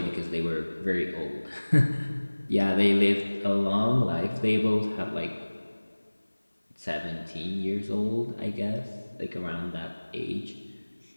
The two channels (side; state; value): both; inverted; correlation -1.00